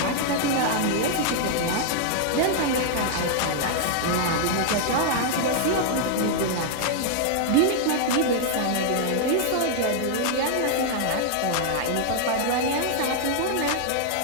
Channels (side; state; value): both; different; correlation 0.00